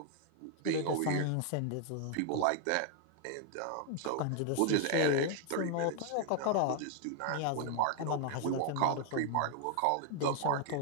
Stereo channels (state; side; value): different; both; correlation 0.00